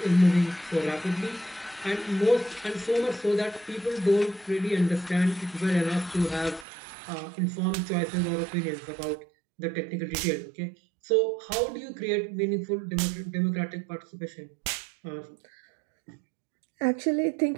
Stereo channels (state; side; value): drops out; left; at 6.7 s